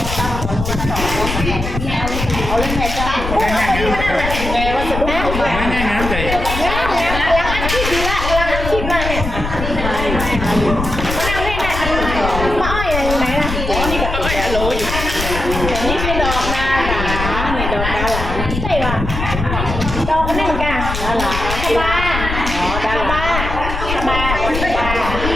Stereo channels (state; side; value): noise; left; rumble, 4 dB below the sound